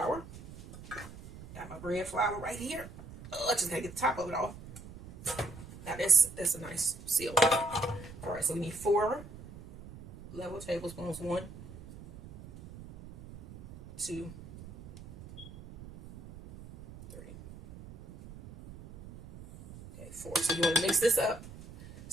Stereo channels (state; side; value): noise; right; rumble, 16 dB below the sound